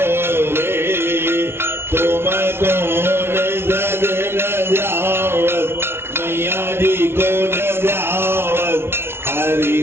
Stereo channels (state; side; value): late; left; 0.12 ms